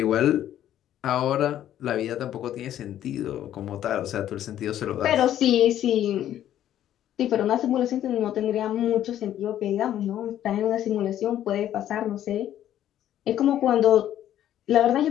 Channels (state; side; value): quieter; right; 11.6 dB